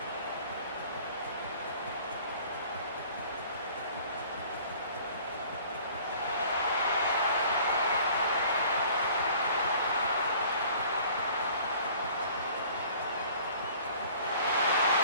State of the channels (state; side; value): inverted; both; correlation -0.51